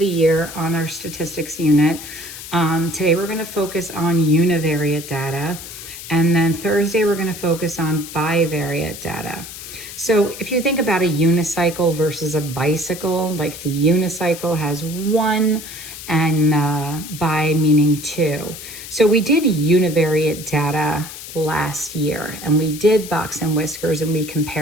year on our statistics unit. Today we're going to focus on univariate data, and then Thursday we're going to focus on bivariate data. So if you think about a unicycle versus a bicycle, like the unicycle has one and bi meaning two. So we did univariate data last year, and we did box and whiskers, and we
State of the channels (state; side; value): noise; left; hiss, 12 dB below the sound